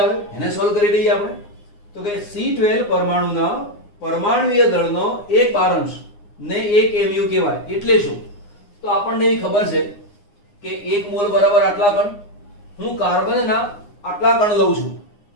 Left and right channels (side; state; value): right; late; 9.7 ms